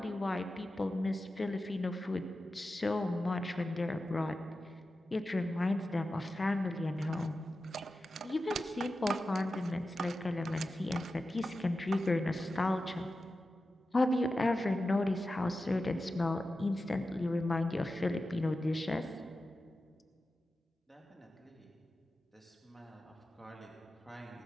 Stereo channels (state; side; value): normal; both; correlation 0.92